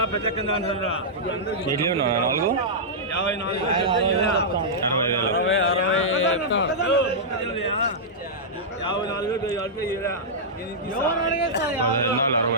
పెద్ద కింద అంటారా 4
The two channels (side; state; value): both; normal; correlation -0.11